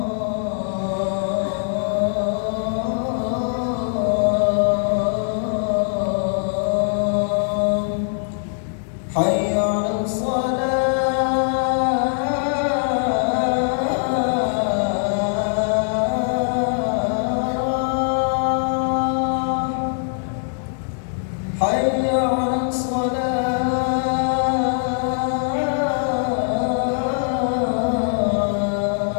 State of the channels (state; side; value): silent; right; digital silence